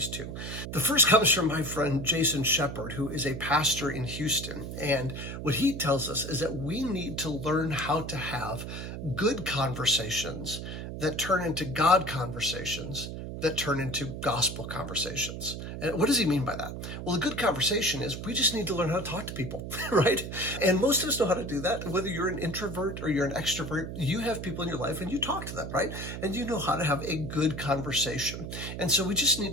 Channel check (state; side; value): noise; right; hum, 7 dB below the sound